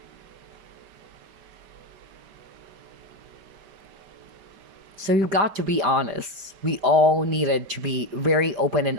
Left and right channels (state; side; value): late; left; 5.2 ms